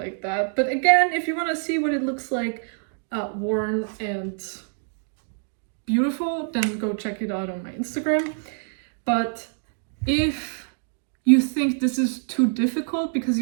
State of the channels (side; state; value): left; silent; 60 dB below the other